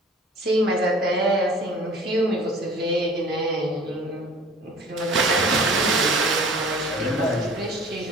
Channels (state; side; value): normal; both; correlation 0.46